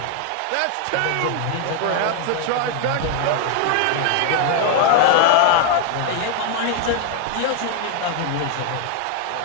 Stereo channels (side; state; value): both; different; correlation 0.00